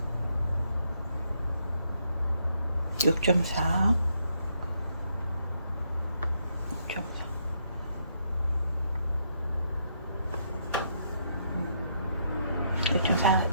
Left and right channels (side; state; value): both; inverted; correlation -0.75